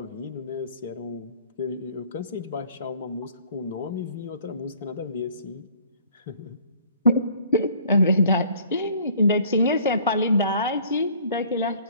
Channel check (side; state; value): both; inverted; correlation -0.55